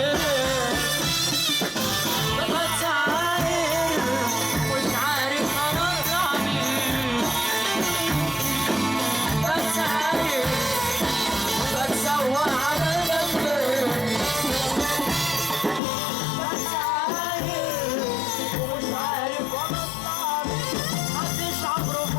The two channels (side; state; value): right; drops out; at 15.8 s